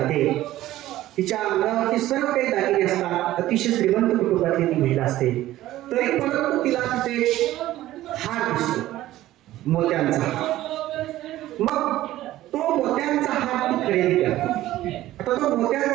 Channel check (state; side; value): quieter; left; 14.9 dB